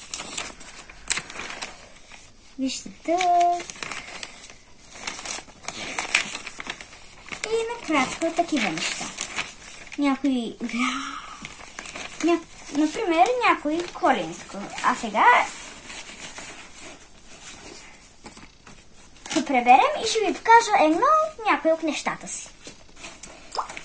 Вижте тук. И накратко такива неща. Например, някой коленско. А сега заедно преберем и ще ви покажа някои от нещата си.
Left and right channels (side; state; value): both; identical; correlation 1.00